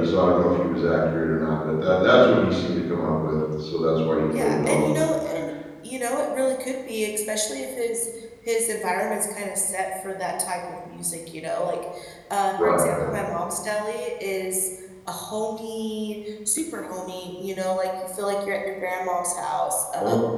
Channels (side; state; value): both; identical; correlation 1.00